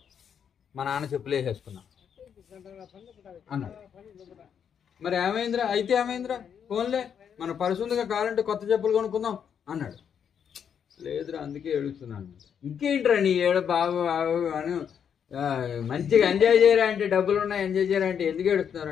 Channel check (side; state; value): right; quieter; 7.9 dB